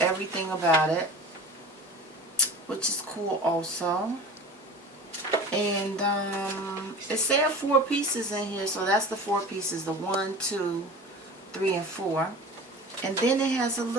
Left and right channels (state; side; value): normal; both; correlation 0.37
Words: about it, which is cool also. And it said 4 pieces in here, so that's the 4 pieces, the 1, 2, 3, and 4. And then it has a